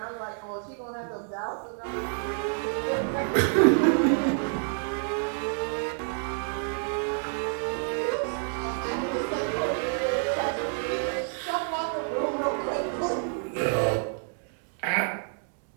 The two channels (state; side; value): silent; left; 59 dB below the other